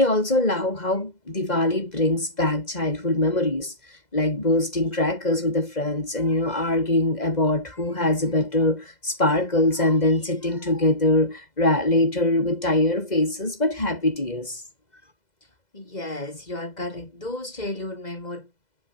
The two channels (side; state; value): right; late; 2.0 ms